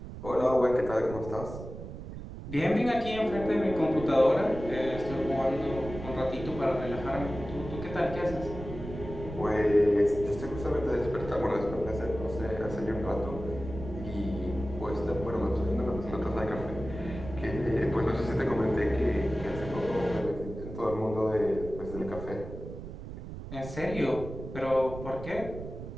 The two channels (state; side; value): noise; right; rumble, 10 dB below the sound